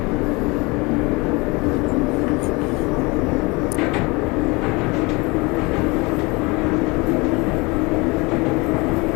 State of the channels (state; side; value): quieter; right; 26.0 dB